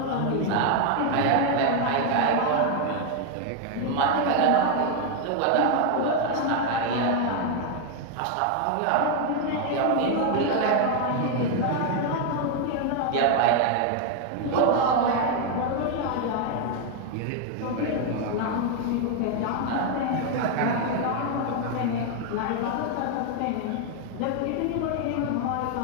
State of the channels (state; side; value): different; both; correlation 0.01